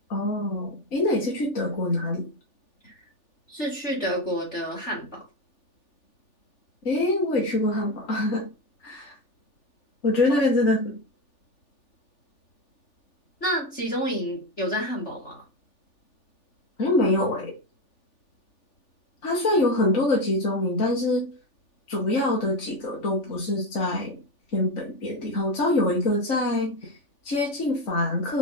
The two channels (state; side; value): late; right; 3.4 ms